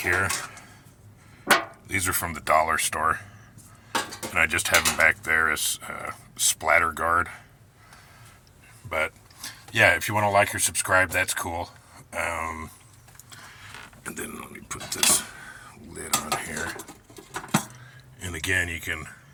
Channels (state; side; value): identical; both; correlation 1.00